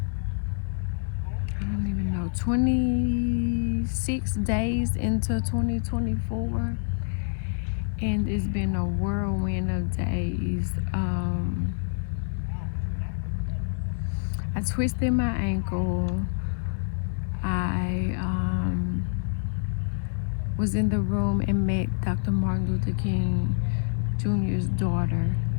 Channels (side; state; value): right; silent; digital silence